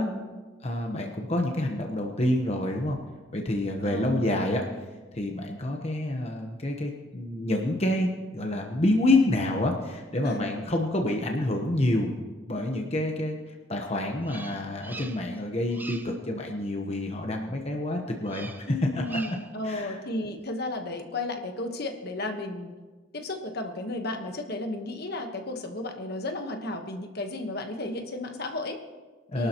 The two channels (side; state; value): both; normal; correlation 0.63